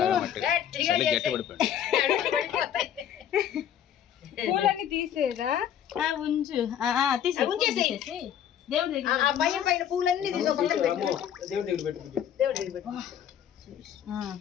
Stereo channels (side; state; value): right; quieter; 9.7 dB